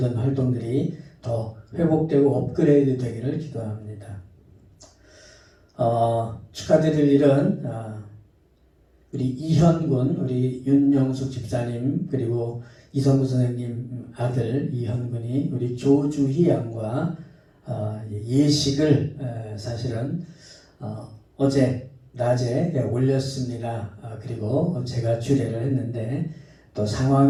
활동들이 더 회복되고 업그레이드 되기를 기도합니다. 축하드릴 일은 우리 이현군, 우리 윤영숙 집사님, 그리고 이성구 선생님 아들 이현군이 우리 조주희 양과 예식을 사실은 어제 낮에 올렸습니다. 그리고 제가 주례를 했는데 또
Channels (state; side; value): identical; both; correlation 1.00